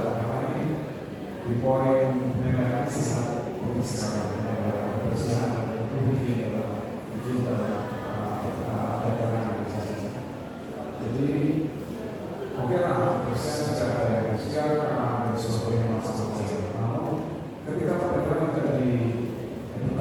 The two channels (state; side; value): identical; both; correlation 1.00